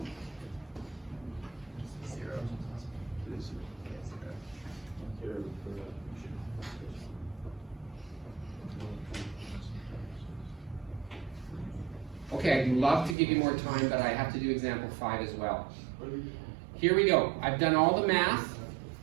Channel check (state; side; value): drops out; left; at 13.2 s